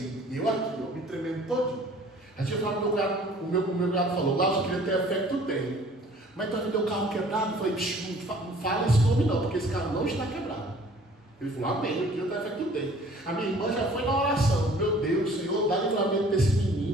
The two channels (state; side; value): normal; both; correlation 0.52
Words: e eu aqui, me tremendo todinho. A gente falou, o meu cunhado falou, lá eu queria ter a fé que tu tem. Mas tu vai vender o carro quebrado? Eu falei, não fala esse nome não, porque esse carro não está quebrado. Ele falou, amém, eu queria ter a fé que tu tem. A minha irmã já foi na oração, meu Deus, Senhor, dá livramento desse